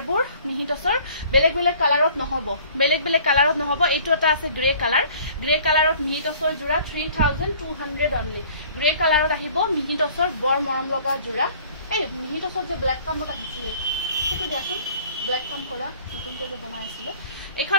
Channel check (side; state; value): both; inverted; correlation -0.52